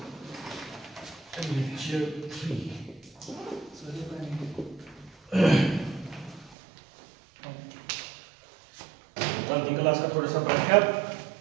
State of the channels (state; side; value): drops out; left; at 6.6 s